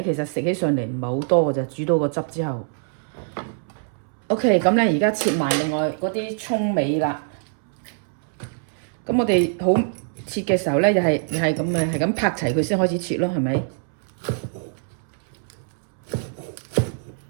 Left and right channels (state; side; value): silent; left; 63 dB below the other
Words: 其實食起上嚟唔係好多嘅啫，煮到個汁之後。OK， 咁咧而家切埋另外嗰啲葱尾啦。咁我哋好切嘅時候咧，又係咁嘅，係咁拍齊佢先開始切咯，係咪？